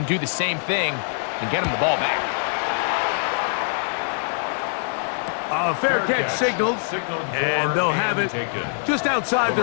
do the same thing and get them the ball back. A fair catch signaled, and they'll have it just outside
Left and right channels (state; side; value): silent; right; 63 dB below the other